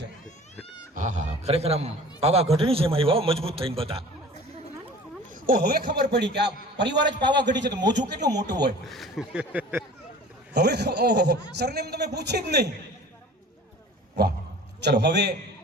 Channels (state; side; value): normal; both; correlation 0.44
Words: છે? હા હા, ખરેખર આમ પાવાગઢની જેમ આવ્યા મજબૂત થઈને બધા. ઓ હવે ખબર પડી કે આ પરિવાર જ પાવાગઢી છે તો મોજું કેટલું મોટું હોય. હવે ઓહો, સરનેમ તમે પૂછી જ નહીં. વાહ. ચલો હવે